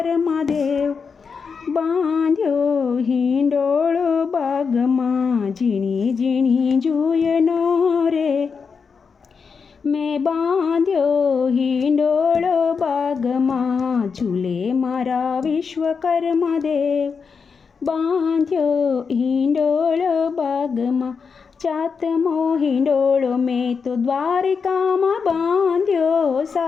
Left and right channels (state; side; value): quieter; right; 5.6 dB